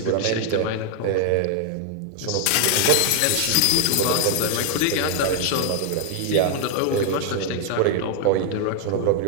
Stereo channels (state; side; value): different; both; correlation 0.00